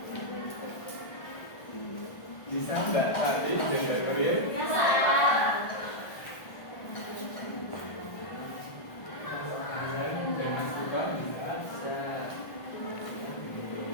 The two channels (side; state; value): right; late; 1.4 ms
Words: Bisa Mbak Tati dan Mbak Nuril?